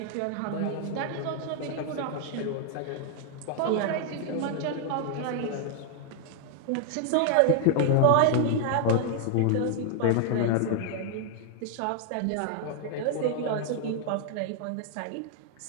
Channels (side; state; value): both; different; correlation 0.00